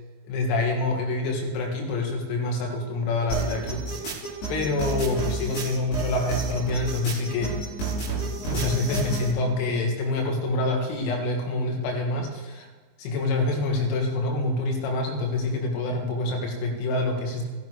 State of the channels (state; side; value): late; right; 19 ms